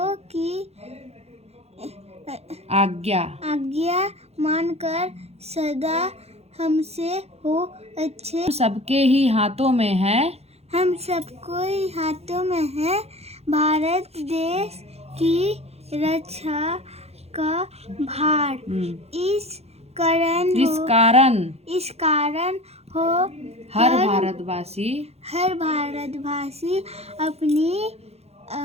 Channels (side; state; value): left; late; 0.30 ms